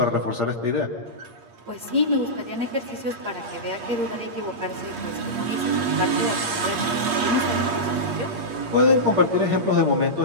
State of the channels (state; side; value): late; left; 8.6 ms